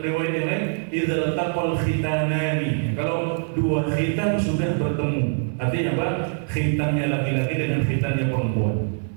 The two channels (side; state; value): left; silent; digital silence